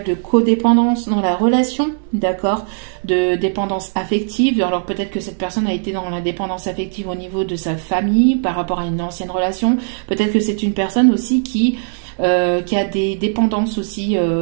de codépendance dans la relation, d'accord, de dépendance affective. Alors peut-être que cette personne a été dans la dépendance affective au niveau de sa famille par rapport à une ancienne relation. Peut-être que c'est une personne aussi qui a des dépendances aussi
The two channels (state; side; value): silent; left; 65 dB below the other